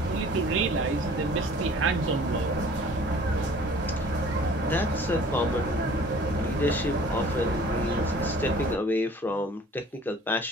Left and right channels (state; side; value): normal; both; correlation 0.49